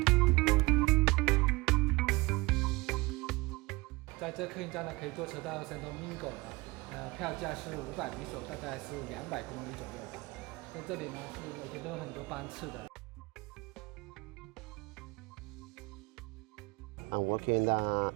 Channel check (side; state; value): left; quieter; 23.3 dB